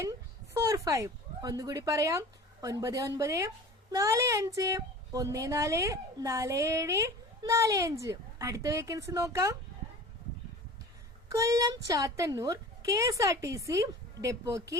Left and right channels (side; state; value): both; normal; correlation 0.39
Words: ഒന്നുകൂടി പറയാം: 9945144745. അടുത്ത വേക്കൻസി നോക്കാം. കൊല്ലം ചാത്തന്നൂർ KSRTC ഡെപ്പോക്ക്